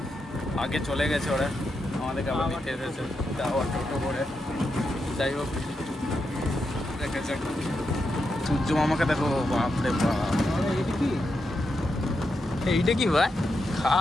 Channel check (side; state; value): both; normal; correlation 0.85